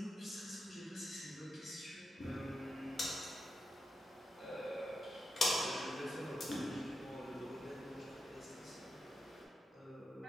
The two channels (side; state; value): both; normal; correlation 0.87